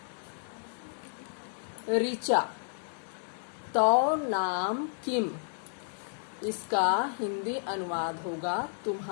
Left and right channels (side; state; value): right; silent; digital silence